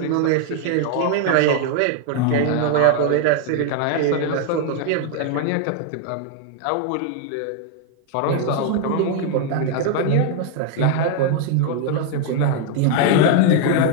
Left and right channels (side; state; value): both; different; correlation 0.00